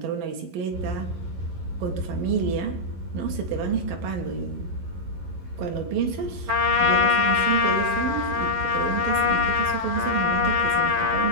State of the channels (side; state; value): left; late; 11 ms